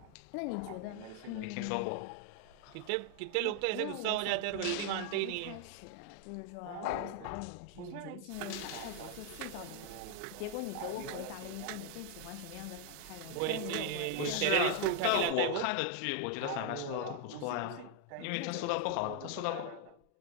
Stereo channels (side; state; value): both; different; correlation 0.01